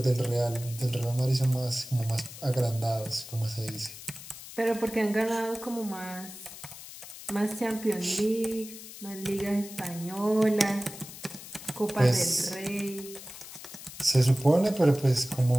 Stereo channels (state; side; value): noise; left; hiss, 14 dB below the sound